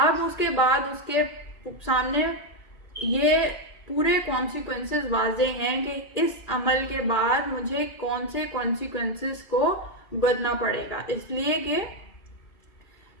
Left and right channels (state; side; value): late; right; 2.3 ms